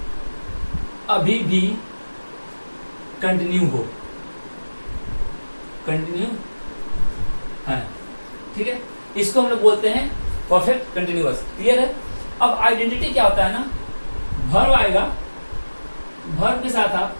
अभी भी कंटिन्यू हो, कंटिन्यू है। ठीक है, इसको हम लोग बोलते हैं परफेक्ट कंटिन्यूअस। क्लियर है। अब आइडेंटिटी क्या होता है ना, वर्ब आएगा, वर्ब के साथ आप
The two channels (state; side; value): inverted; both; correlation -1.00